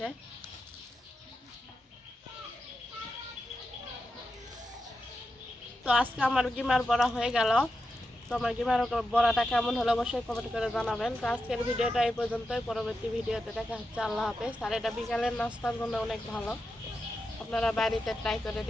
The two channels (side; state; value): both; normal; correlation 0.89